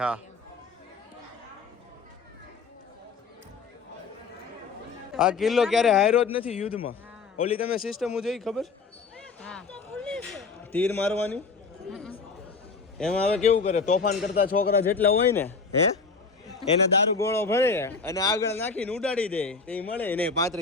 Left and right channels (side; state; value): right; quieter; 4.8 dB